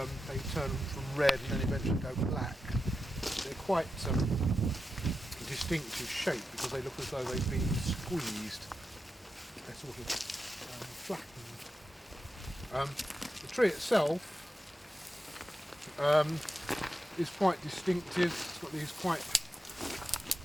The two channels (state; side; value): normal; both; correlation 0.89